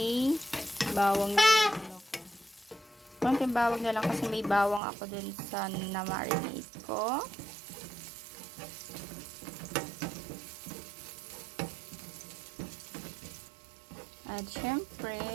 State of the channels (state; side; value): drops out; left; at 4.8 s